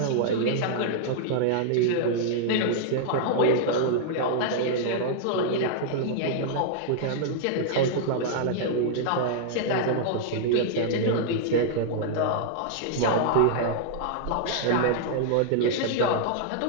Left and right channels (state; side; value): different; both; correlation -0.01